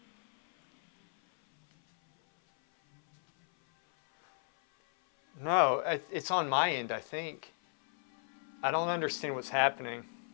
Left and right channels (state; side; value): silent; right; 56 dB below the other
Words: No, it's on my end, I think. I don't understand what's happening.